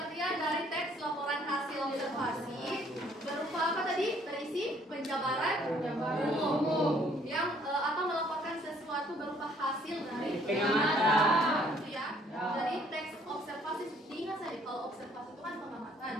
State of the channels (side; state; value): both; normal; correlation 0.62